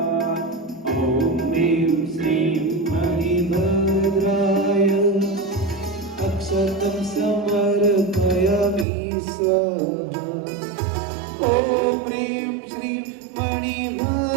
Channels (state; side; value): drops out; left; at 8.8 s